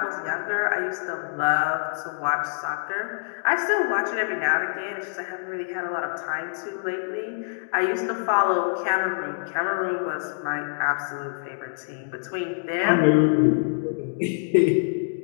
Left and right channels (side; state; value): right; silent; digital silence